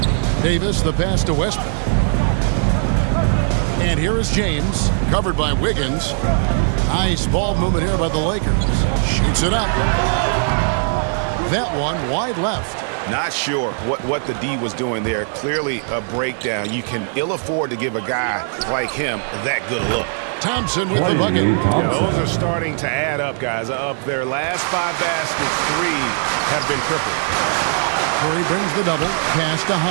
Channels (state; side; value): silent; left; 62 dB below the other